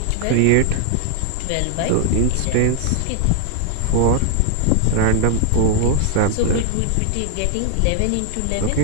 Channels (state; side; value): different; both; correlation 0.00